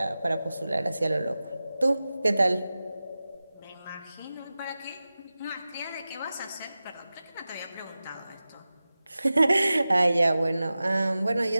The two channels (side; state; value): both; inverted; correlation -0.95